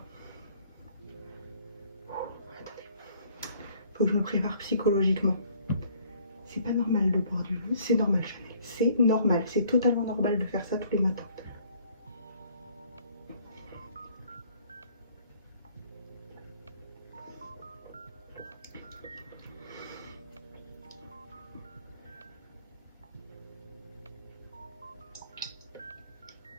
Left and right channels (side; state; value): both; inverted; correlation -0.59